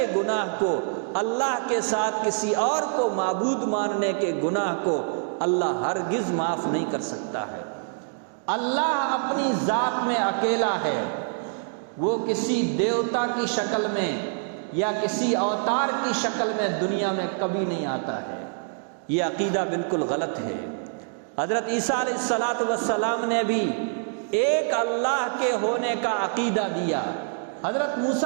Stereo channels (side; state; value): left; silent; digital silence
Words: گناہ کو، اللہ کے ساتھ کسی اور کو معبود ماننے کے گناہ کو اللہ ہرگز معاف نہیں کر سکتا ہے۔ اللہ اپنی ذات میں اکیلا ہے، وہ کسی دیوتا کی شکل میں یا کسی اوتار کی شکل میں دنیا میں کبھی نہیں آتا ہے۔ یہ عقیدہ بالکل غلط ہے۔ حضرت عیسیٰ علیہ الصلوۃ والسلام نے بھی ایک اللہ کے ہونے کا عقیدہ دیا، حضرت